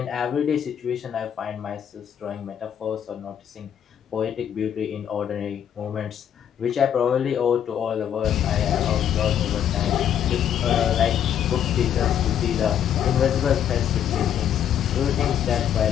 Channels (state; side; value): quieter; right; 9.4 dB